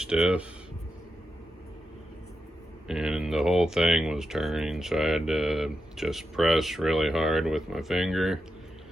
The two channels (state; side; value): normal; both; correlation 0.87